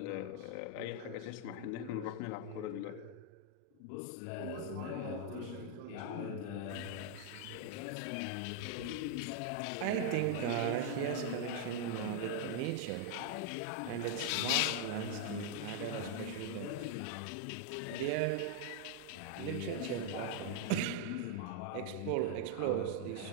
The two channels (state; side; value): different; both; correlation 0.00